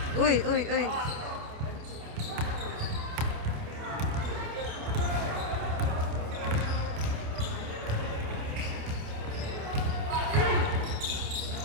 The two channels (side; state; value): left; late; 28 ms